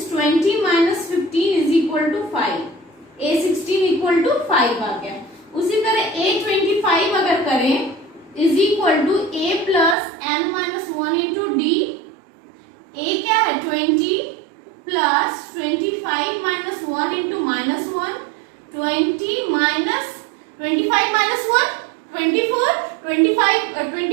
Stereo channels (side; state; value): left; drops out; at 10.0 s